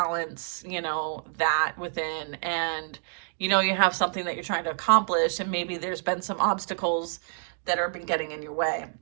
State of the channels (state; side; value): silent; left; digital silence